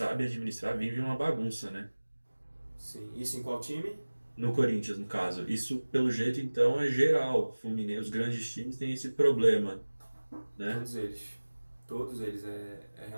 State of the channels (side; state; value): both; inverted; correlation -1.00